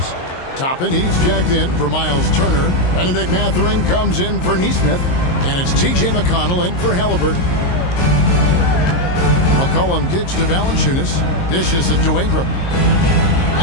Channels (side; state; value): right; late; 22 ms